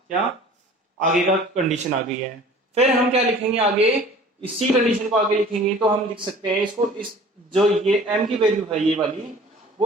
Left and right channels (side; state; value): both; normal; correlation 0.46